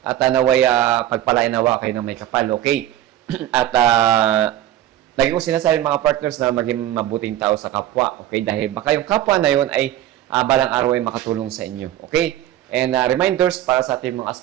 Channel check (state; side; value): quieter; left; 13.1 dB